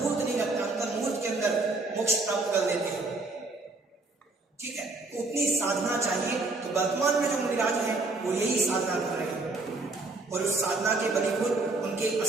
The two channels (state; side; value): quieter; left; 3.3 dB